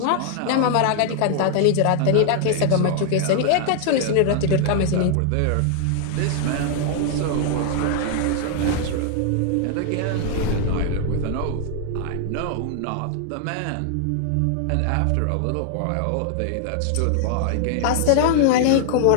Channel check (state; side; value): different; both; correlation 0.00